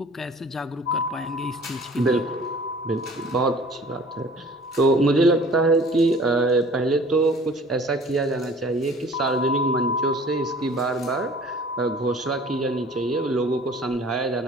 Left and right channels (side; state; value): both; normal; correlation 0.49